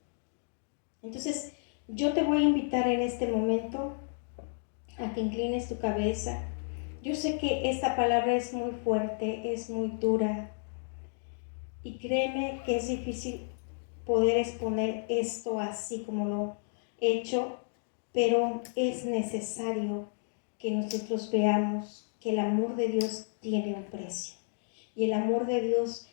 Entonces, yo te voy a invitar en este momento a que inclines tu cabeza. Yo sé que esta palabra es muy fuerte, es muy dura, y créeme que es difícil poder exponer esto así como lo he hecho, pero es necesario que nosotros veamos que el amor de Dios tiene un precio. Y el amor de Dios,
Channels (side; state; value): right; silent; digital silence